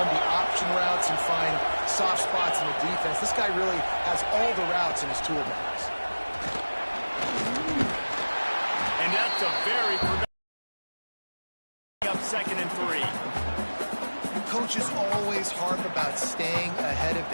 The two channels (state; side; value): inverted; both; correlation -1.00